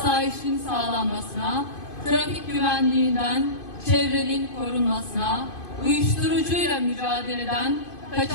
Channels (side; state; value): right; late; 2.5 ms